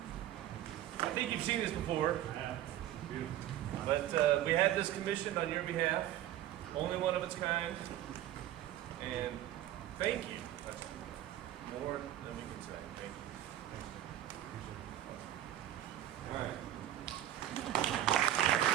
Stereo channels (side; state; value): left; quieter; 12.7 dB